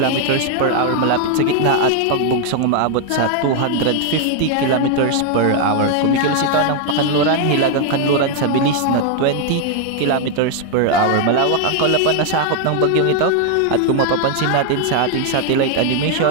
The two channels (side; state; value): both; different; correlation 0.00